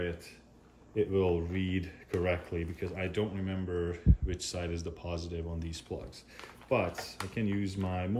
it will read correctly because I don't remember which side is the positive on these plugs. But I can use my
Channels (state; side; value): identical; both; correlation 1.00